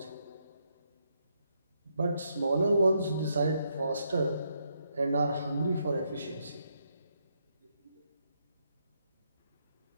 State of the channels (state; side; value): inverted; both; correlation -0.77